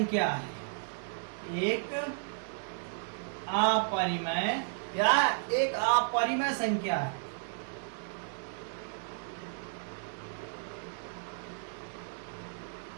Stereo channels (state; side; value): silent; left; digital silence